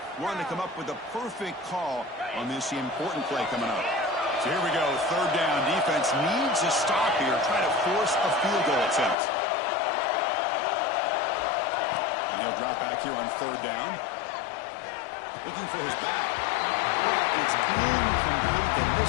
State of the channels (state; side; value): drops out; right; at 9.2 s